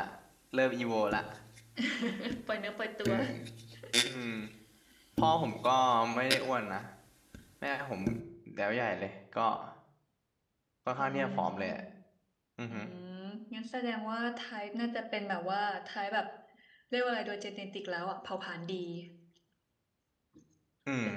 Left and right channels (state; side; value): identical; both; correlation 1.00